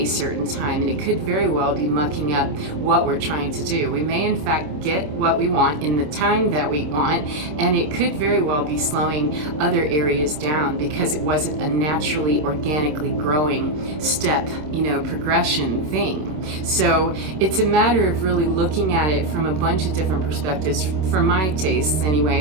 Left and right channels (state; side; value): late; left; 26 ms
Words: certain time, and it could very well be mucking up what we're trying to do. We may in fact get what we want in the time that we want, and it could very well be slowing other areas down because it wasn't a naturally, organically growing step, progression thing. So it's a matter of really looking at it from a bunch of different perspectives. For my tastes